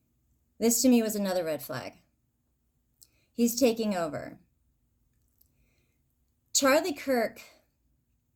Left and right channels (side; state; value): both; identical; correlation 1.00